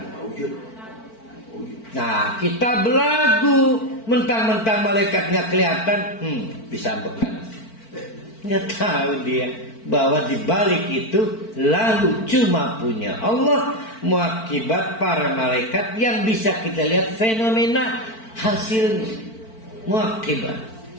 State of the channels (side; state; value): right; late; 4.5 ms